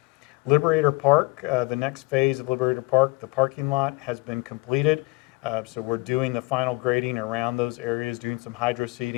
Liberator Park, the next phase of Liberator Park, the parking lot has been completed. So we're doing the final grading around those areas, doing some hydro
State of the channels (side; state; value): right; quieter; 23.8 dB